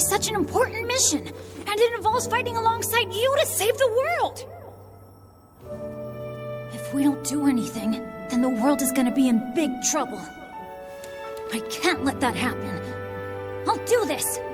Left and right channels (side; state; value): both; identical; correlation 1.00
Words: an important mission, and it involves fighting alongside you to save the world! If we don't do anything, then the world is gonna be in big trouble. I can't let that happen. I'll do this!